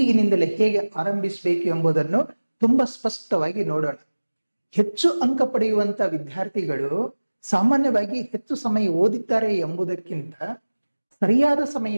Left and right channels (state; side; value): inverted; both; correlation -1.00